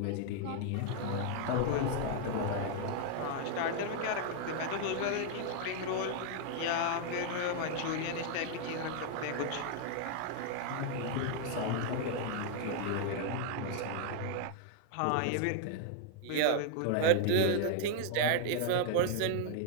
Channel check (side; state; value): both; different; correlation 0.00